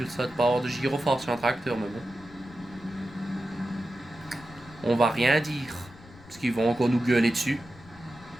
ça de pas avoir de gyrophare sur un tracteur, mais bon. On va rien dire. Parce qu'ils vont encore nous gueuler dessus.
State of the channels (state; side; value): noise; left; rumble, 20 dB below the sound